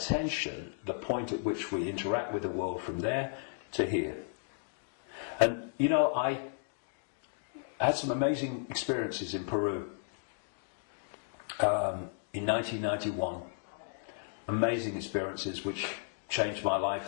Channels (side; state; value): right; silent; digital silence